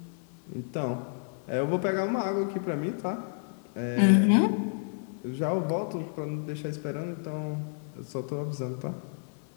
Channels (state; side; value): silent; right; 56 dB below the other